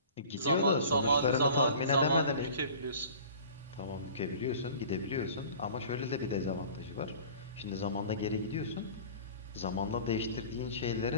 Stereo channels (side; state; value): both; inverted; correlation -0.43